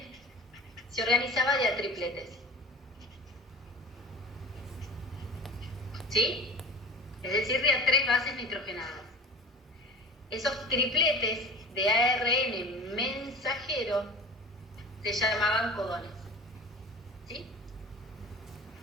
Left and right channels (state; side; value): normal; both; correlation 0.37